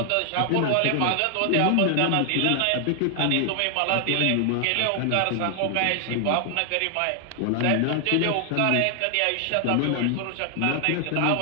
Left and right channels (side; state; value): both; different; correlation 0.00